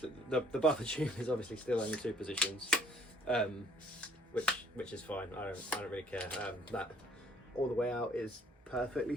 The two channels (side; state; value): both; normal; correlation 0.61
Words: the buffer tube is obviously still only 2 positions, which is fine. I don't really care. That all the way out is perfectly